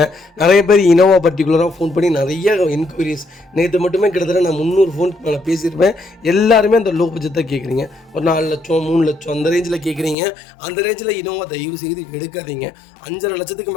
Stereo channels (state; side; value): drops out; right; at 10.2 s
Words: நிறைய பேர் இனோவா பர்டிகுலராக ஃபோன் பண்ணி நிறைய என்கொயரிஸ். நேற்று மட்டுமே கிட்டத்தட்ட நான் 300 ஃபோனுக்கு மேலே பேசியிருப்பேன். எல்லாருமே அந்த லோ பட்ஜெட் தான் கேட்குறீங்க. ஒரு 4 லட்சம் 3 லட்சம் அந்த ரேஞ்சில் கேட்குறீங்க. அந்த ரேஞ்சில் இனோவா தயவு செய்து எடுக்காதீங்க. 5.5 லட்சத்துக்கு